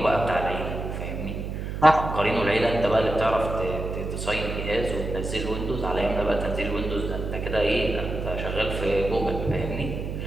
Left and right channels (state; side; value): noise; right; hum, 5 dB below the sound